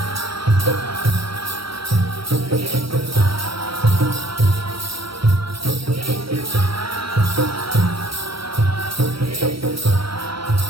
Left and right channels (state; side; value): late; left; 0.75 ms